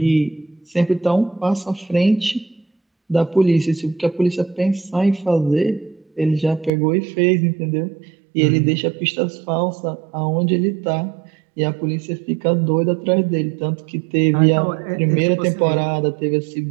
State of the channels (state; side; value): drops out; left; at 6.7 s